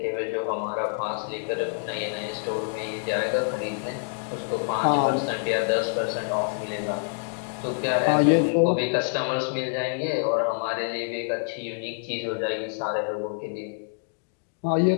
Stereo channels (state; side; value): silent; right; 60 dB below the other